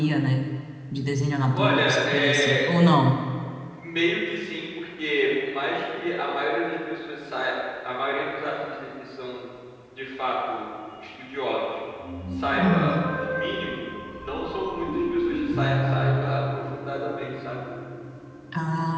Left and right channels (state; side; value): identical; both; correlation 1.00